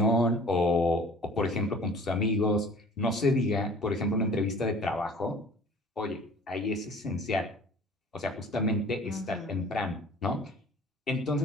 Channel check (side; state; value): both; normal; correlation 0.48